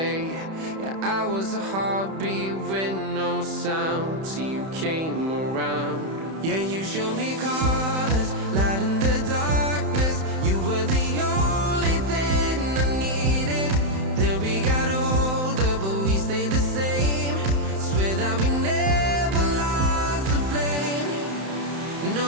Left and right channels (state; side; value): late; left; 31 ms